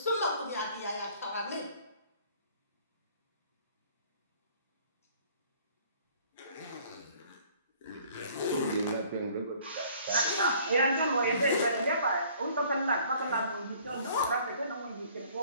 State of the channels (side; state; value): both; inverted; correlation -0.56